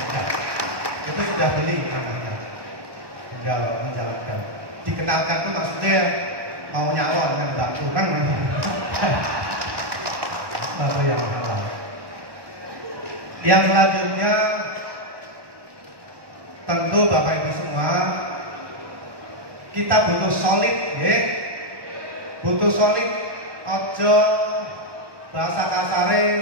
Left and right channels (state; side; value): late; left; 1.2 ms